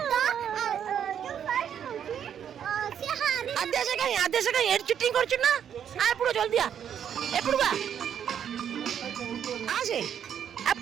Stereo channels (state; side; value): quieter; left; 8.9 dB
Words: ଆଦ୍ୟା ସେ କାହିଁ ଏଠି ଚିଟିଂ କରୁଛୁ ନା? ଏପଟୁ ଜଲ୍ଦି ଏପଟୁ ଆସେ।